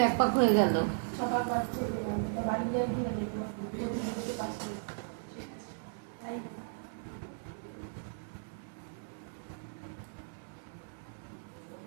1 পাক হয়ে গেল। সকাল পাচ্ছে বাড়ি যাওয়ার দিন দেখবো প্রতিদিনকে পাচ্ছি তাই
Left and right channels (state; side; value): silent; left; digital silence